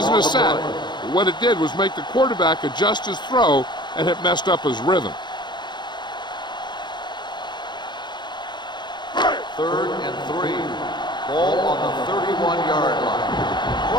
a sack. But what it did was make the quarterback adjust his throw, and it messed up his rhythm. 3rd and 3. Ball on the 31-yard line.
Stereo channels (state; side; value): late; right; 0.21 ms